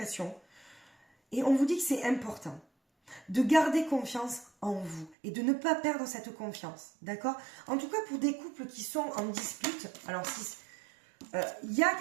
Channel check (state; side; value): drops out; left; at 5.2 s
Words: Et on vous dit que c'est important de garder confiance en vous et de ne pas perdre cette confiance. D'accord? En tout cas, pour des couples qui sont en dispute, alors il y a